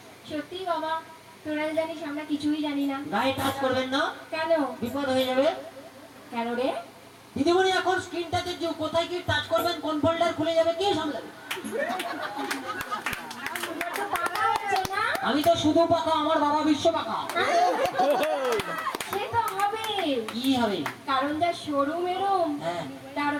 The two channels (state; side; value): identical; both; correlation 1.00